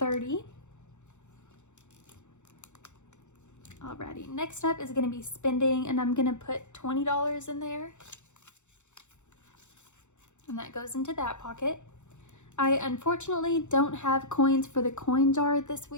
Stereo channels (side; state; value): right; late; 0.84 ms